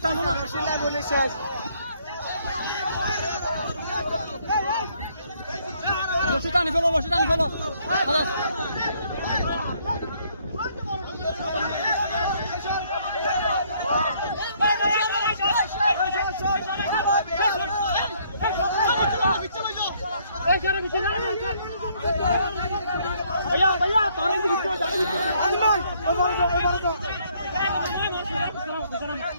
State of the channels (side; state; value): both; inverted; correlation -0.66